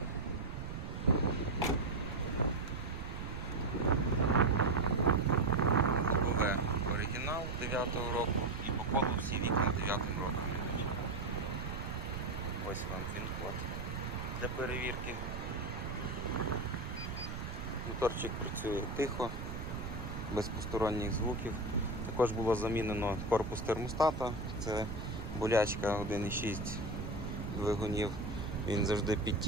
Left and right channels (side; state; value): right; noise; rumble, 6 dB below the sound